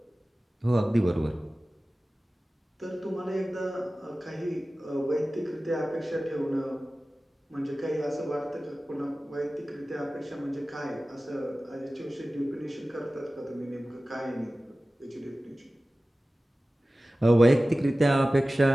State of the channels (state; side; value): normal; both; correlation 0.96